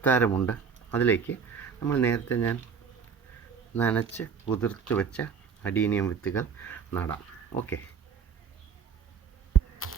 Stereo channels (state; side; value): quieter; left; 6.4 dB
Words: അതിലേക്ക് നമ്മൾ നേരത്തെ ഞാൻ നനച്ച് കുതിർത്ത് വെച്ച അഡീനിയം വിത്തുകൾ നടാം. ഓക്കെ,